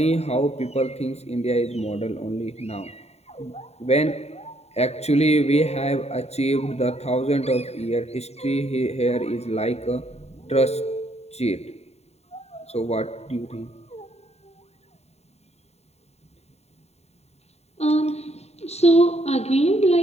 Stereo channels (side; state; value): right; late; 0.31 ms